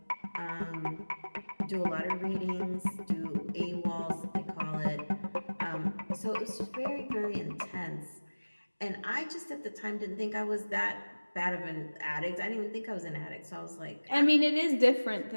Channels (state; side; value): inverted; both; correlation -1.00